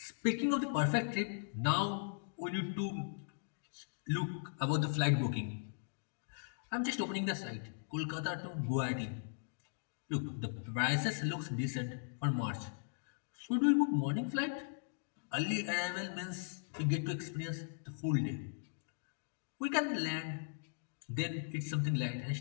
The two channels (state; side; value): silent; right; digital silence